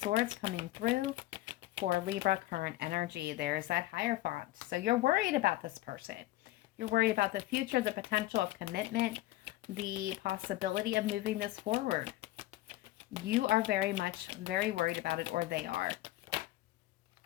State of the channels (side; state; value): right; quieter; 16.8 dB